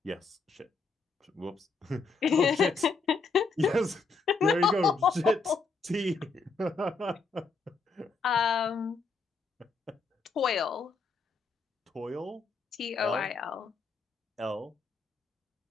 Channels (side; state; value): right; quieter; 4.3 dB